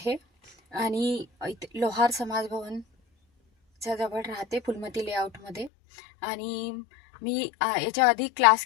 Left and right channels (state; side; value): drops out; right; at 5.7 s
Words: आणि लोहार समाज भवनच्या जवळ राहते, फुलमती लेआउटमध्ये. आणि मी याच्या आधी क्लास